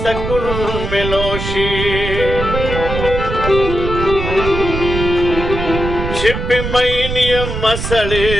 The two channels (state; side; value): noise; right; rumble, 5 dB below the sound